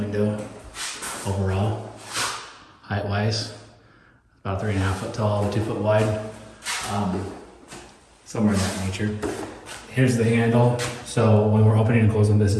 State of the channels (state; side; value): identical; both; correlation 1.00